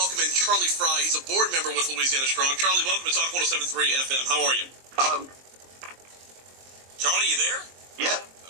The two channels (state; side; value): late; left; 23 ms